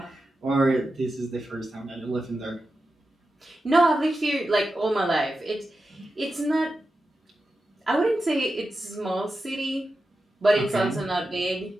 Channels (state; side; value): normal; both; correlation 0.91